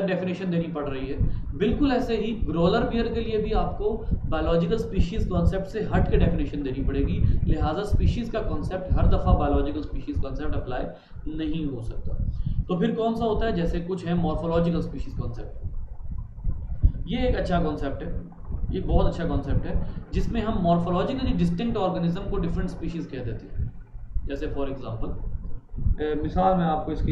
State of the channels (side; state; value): both; identical; correlation 1.00